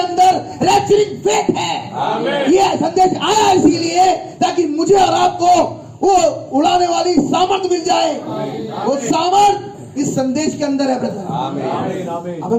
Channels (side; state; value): both; identical; correlation 1.00